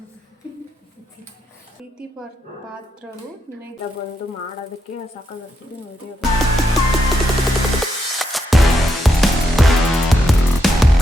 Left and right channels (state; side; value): normal; both; correlation 0.81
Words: ಪ್ರೀತಿ ಪಾತ್ರರು ನಿನಗೆ ಬಂದು ಮಾಡೋದಕ್ಕೆ ಸಾಕಾಗ್ತಿದೆ ನೋಡಿ.